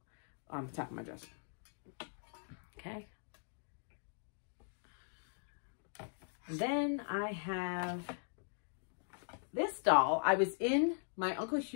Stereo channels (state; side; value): silent; right; digital silence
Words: on the top of my dresser. Okay. And then I have this doll. I was in my Uncle